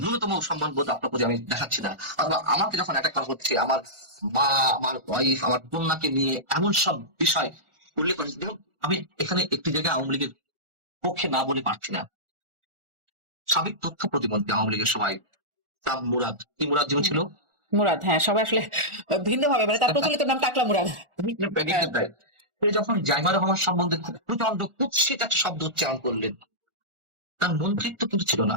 ন্যূনতম সম্মান বোধ আপনার প্রতি আমি দেখাচ্ছি না। অথবা আমাকে যখন অ্যাটাক করা হচ্ছে, আমার মা, আমার ওয়াইফ, আমার কন্যাকে নিয়ে এমন সব বিষয় উল্লেখ করেছি, দেখুন আমি এখানে একটি জায়গায় আওয়ামী লীগের পক্ষে না বলে পারছি না, সাবেক তথ্য প্রতিমন্ত্রী আওয়ামী লীগের সময় নাম মুরাদ, কি মুরাদ যেন ছিল, মুরাদ, হ্যাঁ সবাই আসলে ভিন্ন ভাবে, মানে তার প্রচলিত নাম টাকলা মুরাদ। সে যখন জাইমা রহমান সম্বন্ধে খুব প্রচন্ড কুৎসিত একটা শব্দ উচ্চারণ করলেন, তার মন্ত্রিত্ব কিন্তু ছিল না।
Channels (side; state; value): left; late; 1.4 ms